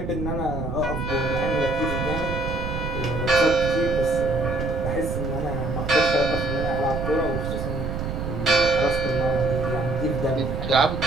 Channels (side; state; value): right; noise; rumble, 4 dB below the sound